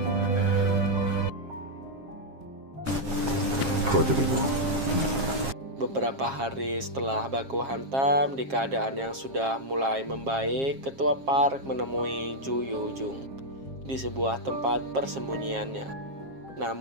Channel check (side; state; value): left; late; 7.5 ms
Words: Beberapa hari setelah baku hantam, di keadaan yang sudah mulai membaik, Ketua Park menemui Ju Yo-jung di sebuah tempat persembunyiannya.